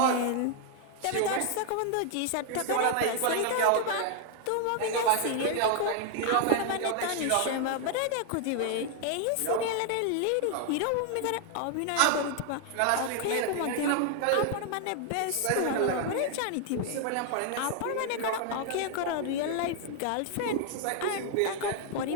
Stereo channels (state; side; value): different; both; correlation 0.00